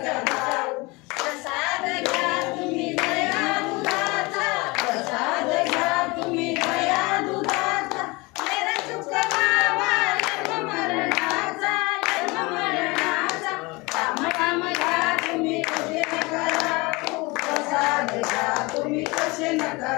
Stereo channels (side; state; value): right; quieter; 24.9 dB